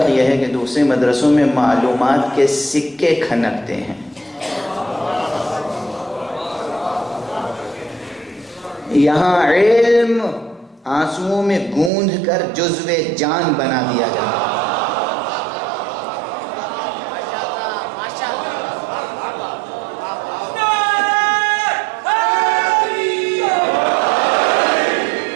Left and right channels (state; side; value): drops out; left; at 11.9 s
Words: یہ ہے کہ دوسرے مدرسوں میں معلومات کے سکے کھنکتے ہیں، یہاں علم آنسوؤں میں گوندھ کر جزو جان بنا دیا جاتا ہے.